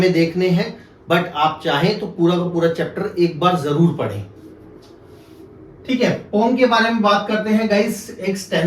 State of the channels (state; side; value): identical; both; correlation 1.00